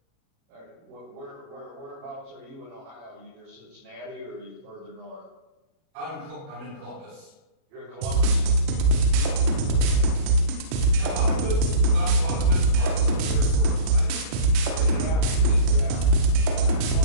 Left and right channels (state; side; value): late; left; 37 ms